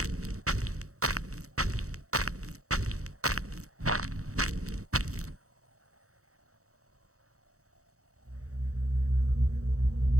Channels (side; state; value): left; late; 0.65 ms